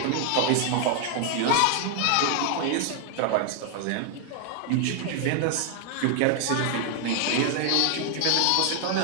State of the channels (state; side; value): different; both; correlation 0.00